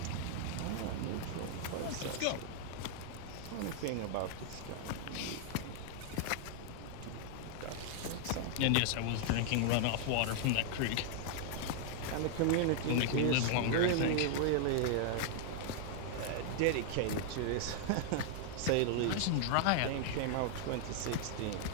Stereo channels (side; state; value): both; different; correlation 0.00